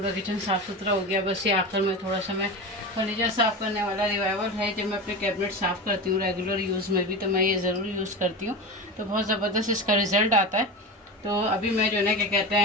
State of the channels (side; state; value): both; normal; correlation 0.25